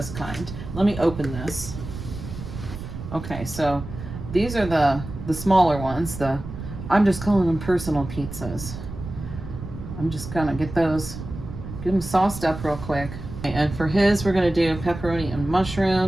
kind. Let me open this. Okay, so these are the smaller ones. I'm just calling them personal pizzas. I'm just gonna get those, get them sauced up real quick. And for his, we're gonna do pepperoni and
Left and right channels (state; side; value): noise; right; rumble, 10 dB below the sound